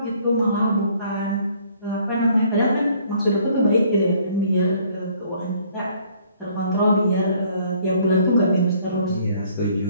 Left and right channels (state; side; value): inverted; both; correlation -0.61